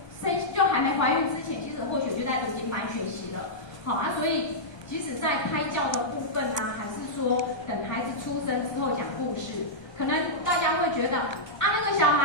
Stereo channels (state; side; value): late; right; 1.2 ms